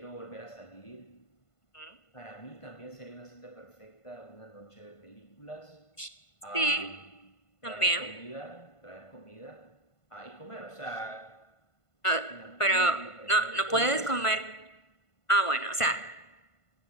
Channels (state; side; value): late; right; 1.5 ms